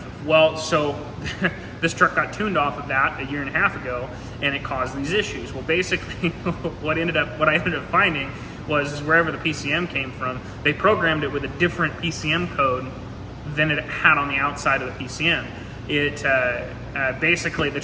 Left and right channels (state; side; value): identical; both; correlation 1.00